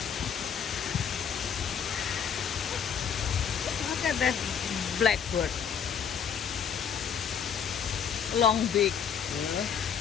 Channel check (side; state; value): right; quieter; 7.5 dB